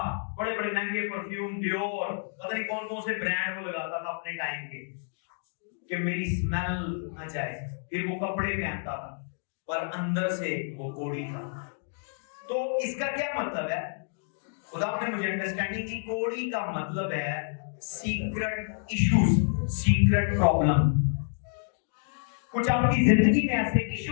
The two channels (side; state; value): right; silent; digital silence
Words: बड़े बड़े महंगे परफ्यूम, डियोर, पता नहीं कौन कौन से ब्रांड वो लगाता था अपने टाइम के कि मेरी स्मेल न जाए। फिर वो कपड़े पहनता था पर अंदर से वो कोड़ी था। तो इसका क्या मतलब है? खुदा ने मुझे अंडरस्टैंडिंग दी। कोड़ी का मतलब है सीक्रेट इश्यूज, सीक्रेट प्रॉब्लम। कुछ आपकी जिंदगी में ऐसे